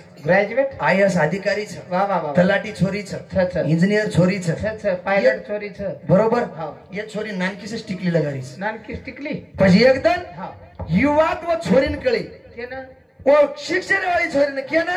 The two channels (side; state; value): both; identical; correlation 1.00